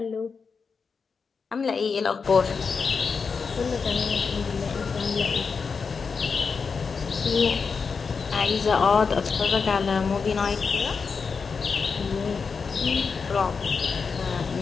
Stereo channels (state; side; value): quieter; right; 5.3 dB